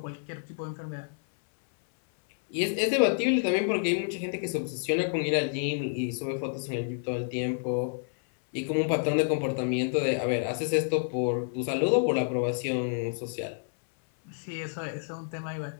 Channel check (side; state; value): right; silent; 59 dB below the other